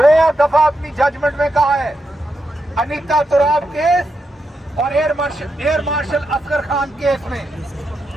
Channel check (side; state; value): both; normal; correlation 0.84